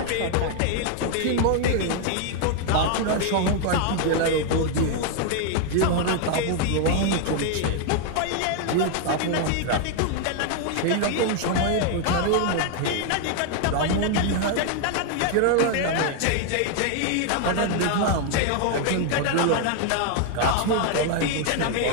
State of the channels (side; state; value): both; different; correlation 0.00